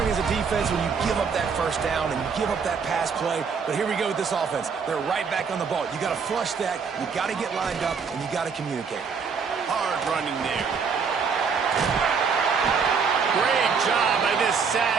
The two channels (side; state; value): left; quieter; 5.8 dB